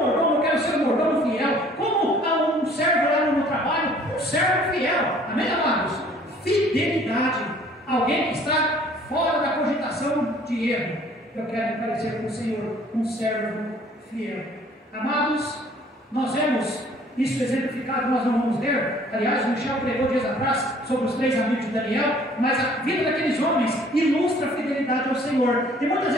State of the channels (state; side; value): normal; both; correlation 0.56